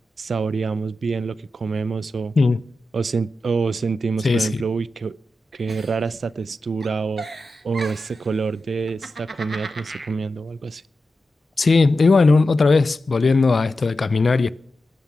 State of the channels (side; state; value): both; normal; correlation 0.91